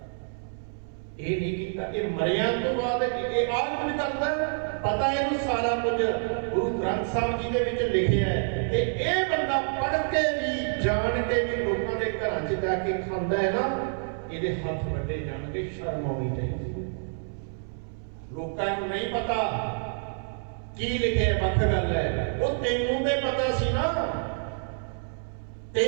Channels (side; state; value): left; silent; 60 dB below the other